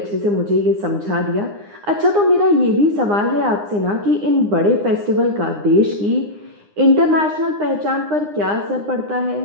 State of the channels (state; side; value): late; left; 9.8 ms